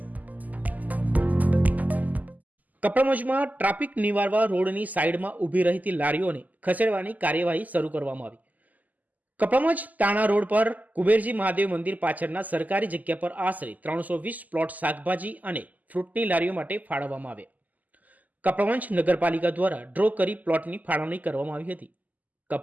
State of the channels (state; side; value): late; left; 0.080 ms